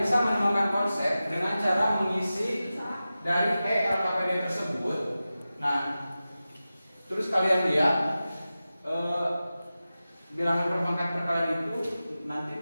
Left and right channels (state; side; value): inverted; both; correlation -0.94